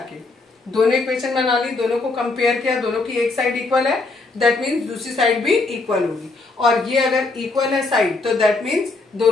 के। दोनों इक्वेशन बना ली, दोनों को कंपेयर किया, दोनों की एक साइड इक्वल है, दैट मीन्स दूसरी साइड भी इक्वल होगी। और ये अगर इक्वल है साइड तो दैट मीन्स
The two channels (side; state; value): right; quieter; 3.5 dB